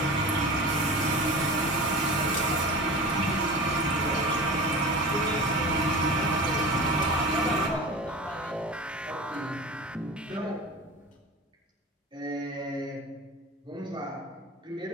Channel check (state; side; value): normal; both; correlation 0.32